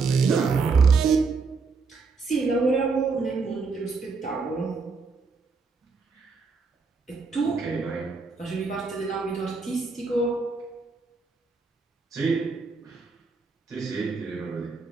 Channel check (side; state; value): left; quieter; 4.6 dB